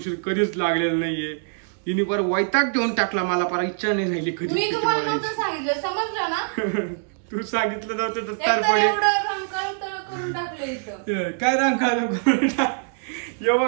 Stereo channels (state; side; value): silent; left; digital silence